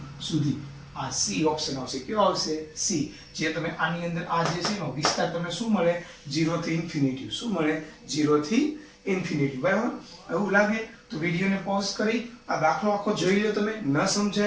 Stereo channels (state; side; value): identical; both; correlation 1.00